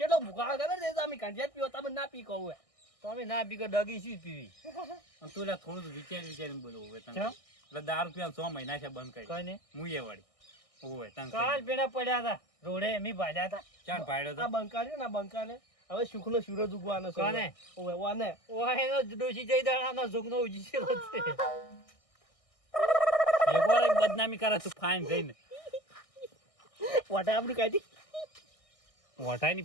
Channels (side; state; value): right; late; 1.6 ms